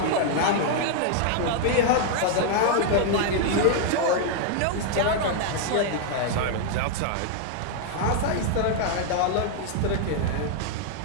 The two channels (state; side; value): different; both; correlation 0.00